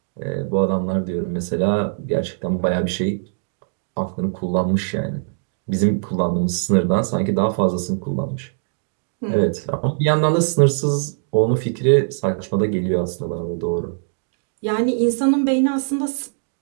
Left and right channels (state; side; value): silent; left; digital silence